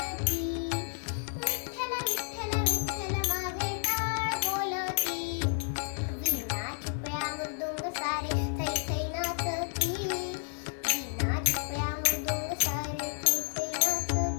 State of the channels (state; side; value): silent; right; 57 dB below the other